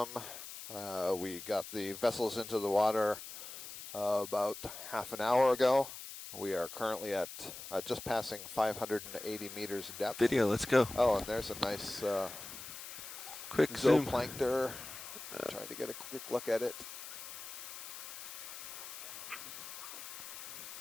We got the vessels into the water about half an hour ago. We are currently at just passing 580 meters depth. Video, let's go. Oh, and there's a nice Quick zoom. zooplankton. Trying to get a quick look at it.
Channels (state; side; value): noise; left; hiss, 11 dB below the sound